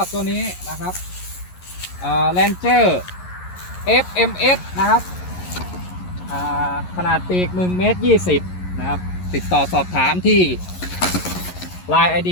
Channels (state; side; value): late; right; 11 ms